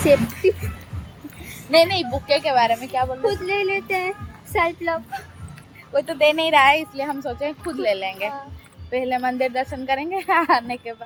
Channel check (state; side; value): identical; both; correlation 1.00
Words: सेफ्टी नहीं बुके के बारे में क्या बोल रहे, खुद ले लेते हैं सेल्फ लव। कोई तो दे नहीं रहा है इसलिए हम सोचे खुद ले लेंगे। पहले मंदिर दर्शन करेंगे आने के